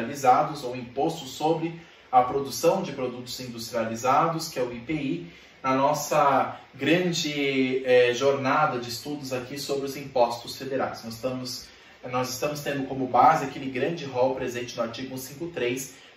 ou imposto sobre a produção de produtos industrializados, que é o IPI, na nossa grande jornada de estudos aqui sobre os impostos federais. Nós estamos tendo como base aquele grande rol presente no artigo 153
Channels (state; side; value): identical; both; correlation 1.00